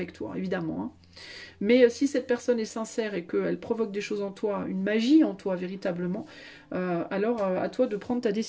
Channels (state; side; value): identical; both; correlation 1.00